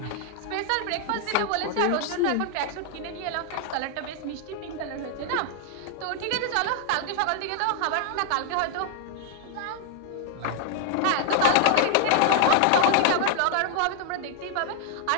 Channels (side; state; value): both; different; correlation 0.00